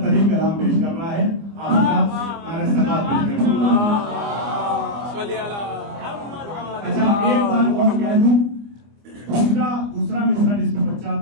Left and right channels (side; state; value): left; late; 25 ms